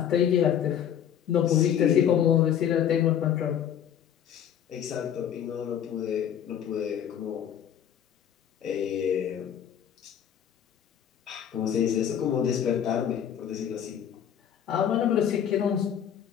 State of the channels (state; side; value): quieter; right; 9.3 dB